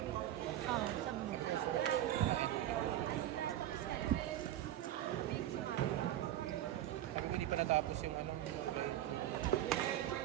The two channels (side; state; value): left; quieter; 12.7 dB